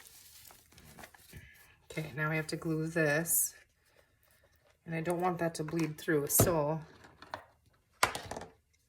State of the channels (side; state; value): both; identical; correlation 1.00